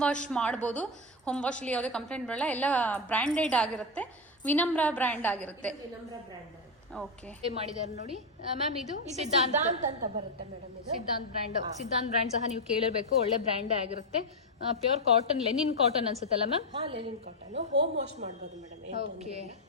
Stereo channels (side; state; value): both; normal; correlation 0.06